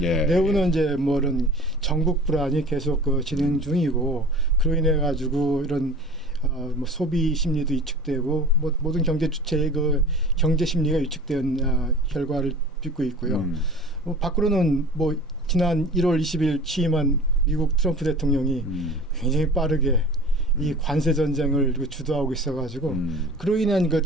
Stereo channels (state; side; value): normal; both; correlation 0.40